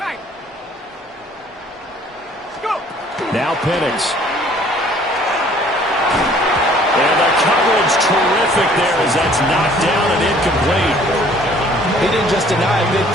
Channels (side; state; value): both; normal; correlation 0.56